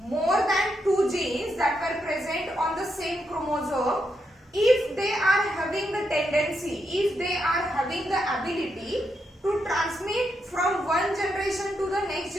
than 2 genes that were present on the same chromosome, if they are having the tendency, if they are having the ability to transmit from one generation to the next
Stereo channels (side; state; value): both; normal; correlation 0.82